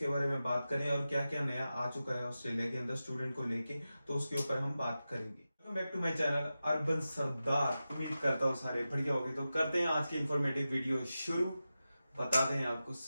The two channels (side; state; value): both; inverted; correlation -0.93